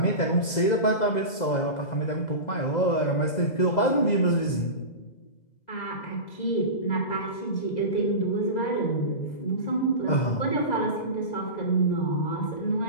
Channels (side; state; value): right; late; 2.0 ms